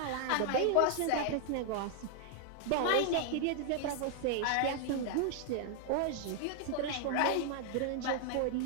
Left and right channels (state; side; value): different; both; correlation 0.00